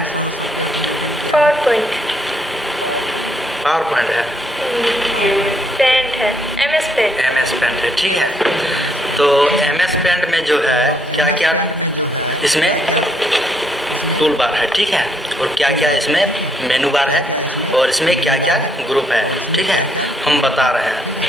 Power point. पावर पॉइंट है? पेंट है, MS पेंट। MS पेंट है, ठीक है। तो MS पेंट में जो है क्या क्या इसमें टूल बार है, ठीक है, और क्या क्या इसमें मेनू बार है, और इसमें क्या क्या ग्रुप है, ठीक है, हम बता रहे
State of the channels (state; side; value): normal; both; correlation 0.72